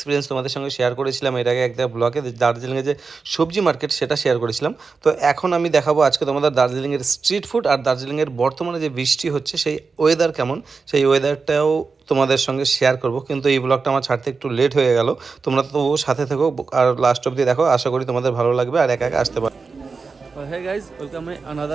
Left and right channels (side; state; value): left; quieter; 4.6 dB